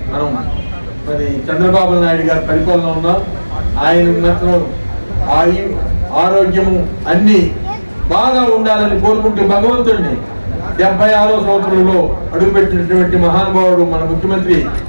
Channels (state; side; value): inverted; both; correlation -1.00